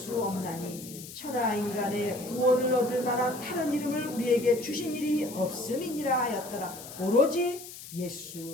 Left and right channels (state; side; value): noise; left; hiss, 14 dB below the sound